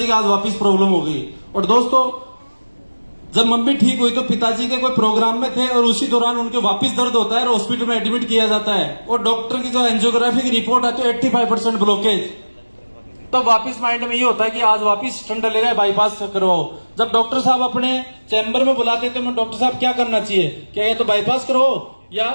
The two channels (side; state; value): both; inverted; correlation -1.00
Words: की आज वापस प्रॉब्लम हो गई। और दोस्तों जब मम्मी ठीक हुई तो पिताजी के कोई प्रोग्राम में थे और उसी दौरान उनके वापस दर्द होता है और हॉस्पिटल में एडमिट किया जाता है। और डॉक्टर की जो एंजियोग्राफी की रिपोर्ट आती है 85% ब्लॉकेज। तब वापस माइंड में ये होता है कि आज वापस स्टंट डलेगा, बाईपास करवाओ। जब डॉक्टर साहब अपने चैम्बर में बुलाते थे, मैं डॉक्टर साहब क्या करना चाहिए, क्या ये तो बाईपास करवाओ या